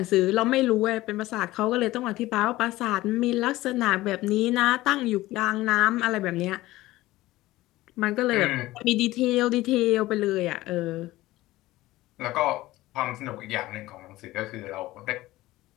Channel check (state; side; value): quieter; right; 17.5 dB